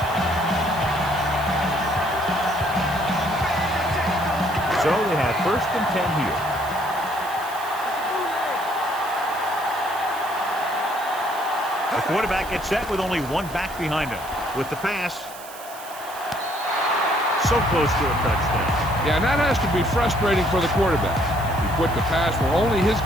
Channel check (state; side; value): noise; right; hiss, 16 dB below the sound